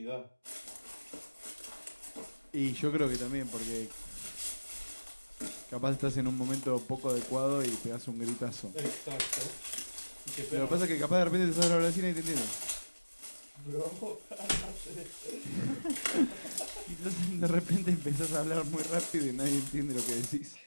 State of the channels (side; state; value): both; inverted; correlation -1.00